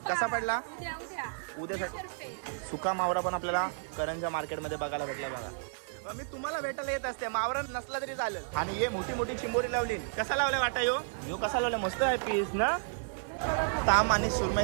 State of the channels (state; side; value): silent; left; digital silence